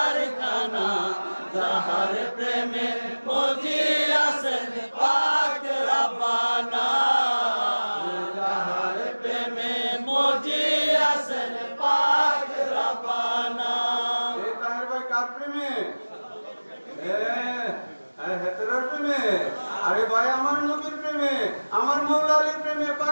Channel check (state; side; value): inverted; both; correlation -1.00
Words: যাহার প্রেমে মজি আছেন পাক রব্বানা যাহার প্রেমে মজি আছেন পাক রব্বানা এ তাহের ভাই কার প্রেমে হেতেরার প্রেমে আরে ভাই আমার নবীর প্রেমে আমার মৌলা আলীর প্রেমে